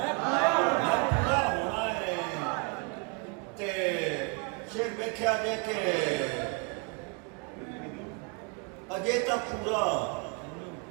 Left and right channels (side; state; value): left; quieter; 33.0 dB